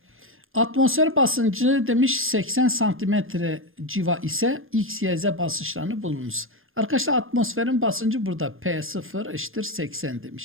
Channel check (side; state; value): left; late; 0.60 ms